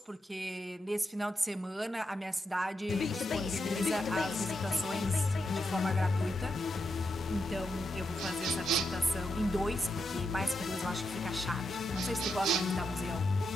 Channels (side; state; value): both; normal; correlation 0.84